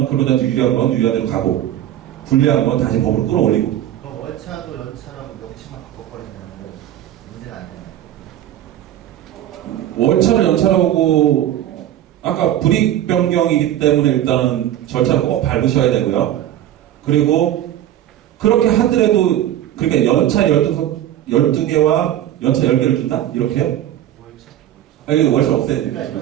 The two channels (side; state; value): left; quieter; 12.2 dB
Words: 근로자한테 유리한 건 유리한 대로 가고 불리한 건 다시 법으로 끌어올리고. 그럼 월차도 연차라고 명칭만 바꿔버리면 문제가 안 되나요? 월차를 연차라고 아까 불이익 변경이기 때문에 일단은 절차를 꼭 밟으셔야 되고요. 그리고 그렇게 하더라도 그러니까 연차 12개와 연차 10개를 준다? 이렇게요? 월차. 월차 없애야 되니까.